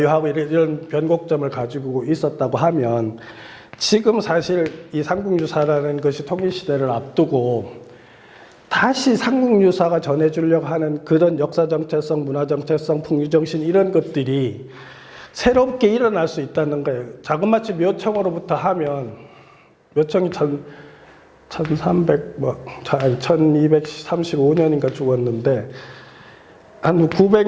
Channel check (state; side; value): identical; both; correlation 1.00